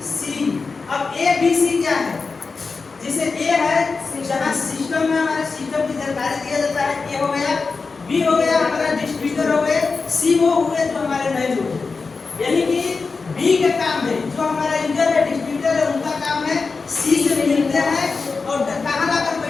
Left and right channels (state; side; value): quieter; right; 4.4 dB